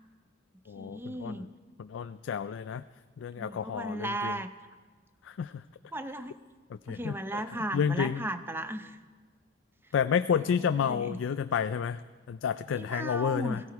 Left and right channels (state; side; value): quieter; right; 5.0 dB